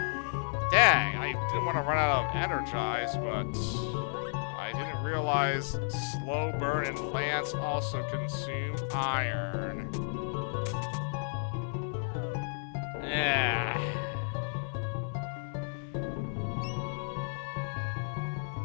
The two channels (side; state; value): right; silent; 56 dB below the other